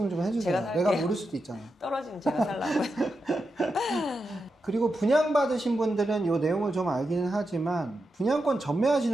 좀 해주세요. 제가 살게요. 내가 모를 수도 있잖아요. 떨어지면 제가 살라고요. 그리고 분양받으신 분들은 이 내용을 좀 알기는 하지만 분양권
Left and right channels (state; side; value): normal; both; correlation 0.88